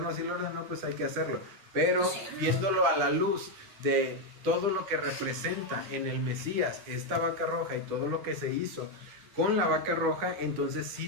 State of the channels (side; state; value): left; late; 9.8 ms